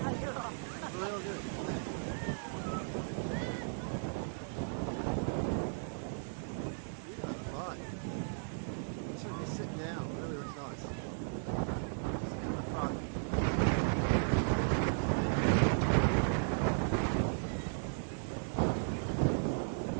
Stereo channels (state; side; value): silent; left; digital silence